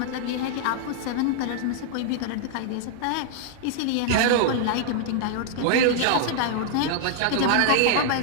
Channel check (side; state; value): both; different; correlation -0.01